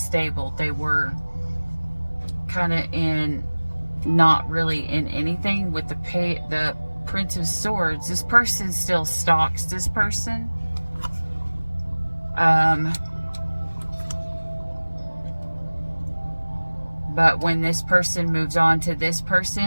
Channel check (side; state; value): both; inverted; correlation -1.00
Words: They were kind of in, not really in anything. With the Prince of Swords, this person still stalks this person. But when this person moves on to this